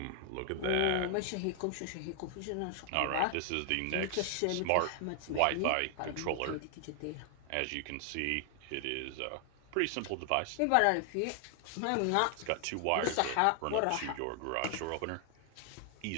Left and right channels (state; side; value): different; both; correlation 0.00